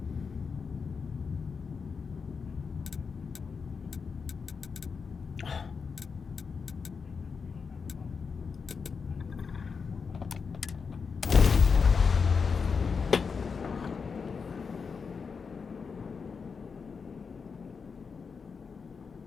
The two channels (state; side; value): quieter; right; 5.4 dB